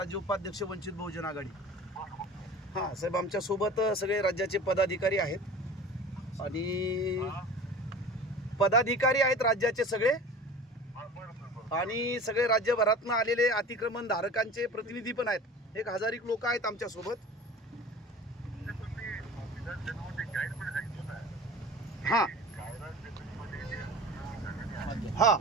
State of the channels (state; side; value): normal; both; correlation 0.39